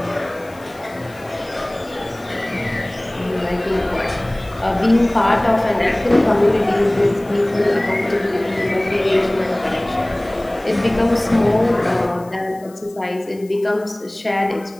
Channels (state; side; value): noise; left; hiss, 26 dB below the sound